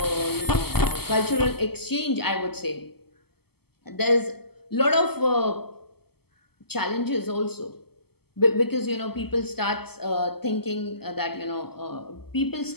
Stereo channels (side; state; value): right; late; 0.96 ms